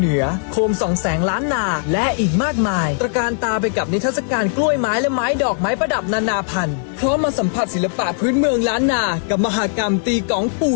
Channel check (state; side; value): silent; right; 57 dB below the other